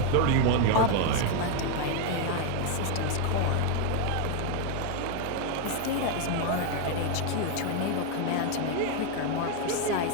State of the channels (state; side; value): different; both; correlation 0.01